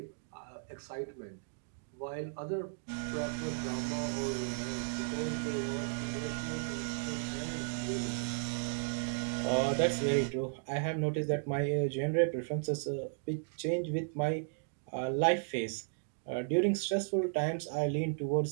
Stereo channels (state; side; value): silent; left; digital silence